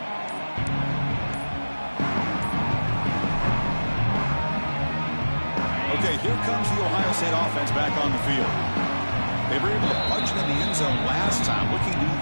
Okay, here comes the Ohio State offense back on the field. They were able to punch it in the end zone last time. Looking to do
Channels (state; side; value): inverted; both; correlation -1.00